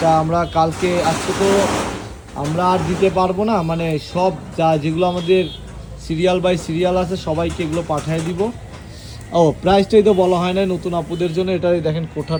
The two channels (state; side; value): identical; both; correlation 1.00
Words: আমরা কালকে, আজকে তো আমরা আর দিতে পারবো না, মানে সব যেগুলো আমাদের সিরিয়াল বাই সিরিয়াল আছে সবাইকে এগুলো পাঠিয়ে দিব। ও প্রাইসটাই তো বলা হয় না নতুন আপুদের জন্য। এটা দেখেন